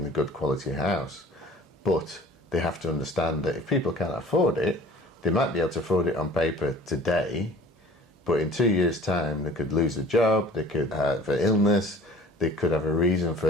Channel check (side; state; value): both; normal; correlation 0.47